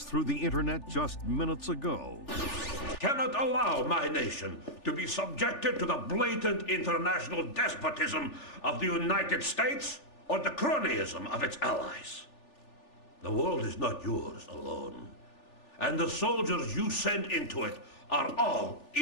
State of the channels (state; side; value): late; right; 3.4 ms